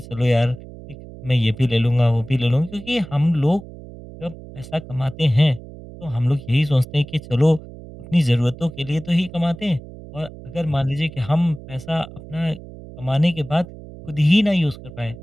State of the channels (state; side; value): noise; right; hum, 16 dB below the sound